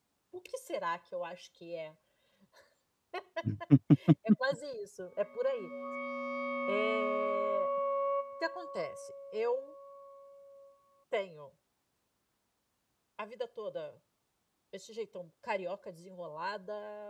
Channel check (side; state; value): both; identical; correlation 1.00